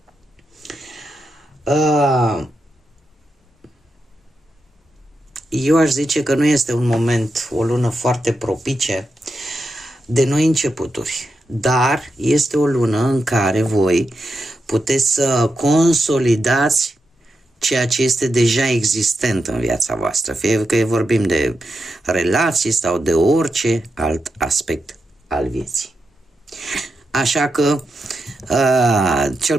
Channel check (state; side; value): normal; both; correlation 0.86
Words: Eu aș zice că nu este un moment, o lună foarte propice de noi începuturi, dar este o lună în care voi puteți să consolidați ceea ce este deja existent în viața voastră, fie că vorbim de relații sau de orice alt aspect al vieții. Așa că,